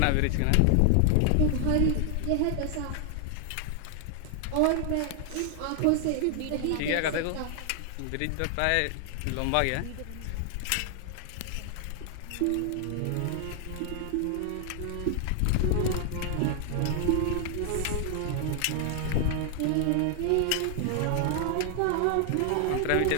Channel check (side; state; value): both; different; correlation 0.00